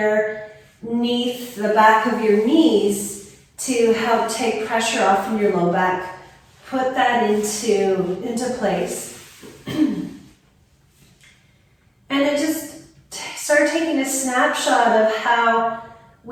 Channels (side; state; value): both; identical; correlation 1.00